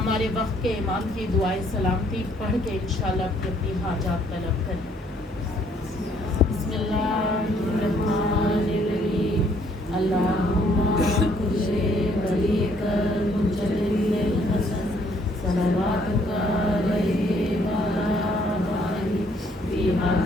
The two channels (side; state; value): both; normal; correlation 0.65